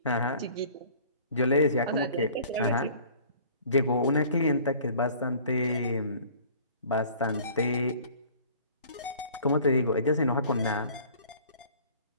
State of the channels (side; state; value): both; inverted; correlation -0.50